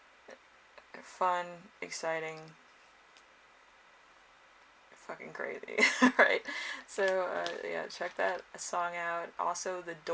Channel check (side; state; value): both; identical; correlation 1.00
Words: Fun, exciting, fucking crazy. Right, so yeah, check that song out. Also, The